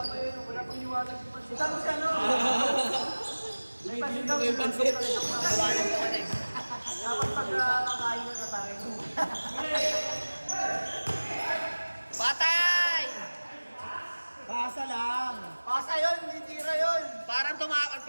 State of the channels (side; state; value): both; inverted; correlation -1.00